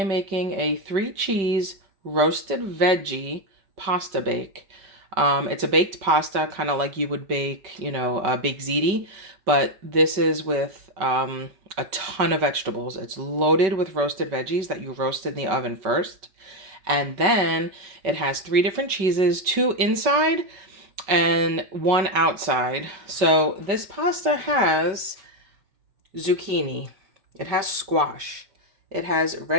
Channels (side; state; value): left; late; 5.2 ms